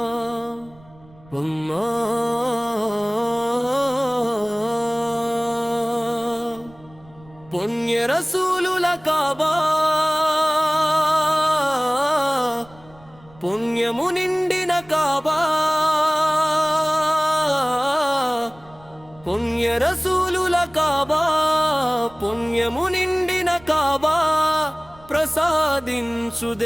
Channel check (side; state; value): right; noise; rumble, 25 dB below the sound